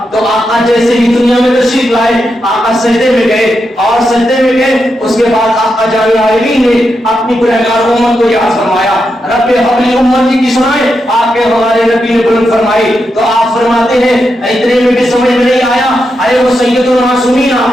تو آقا جیسے ہی دنیا میں تشریف لائے آقا سجدے میں گئے، اور سجدے میں گئے اس کے بعد آقا جامع عالمین نے اپنی گنہگار امت کو یاد فرمایا، رب حبلی امتی کی سنائے، آپ کے ہمارے نبی نے بلند فرمائی۔ تو آپ فرماتے ہیں اتنے میں بھی سمجھ میں نہیں آیا، ارے وہ سید المعصومین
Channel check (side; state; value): both; normal; correlation 0.85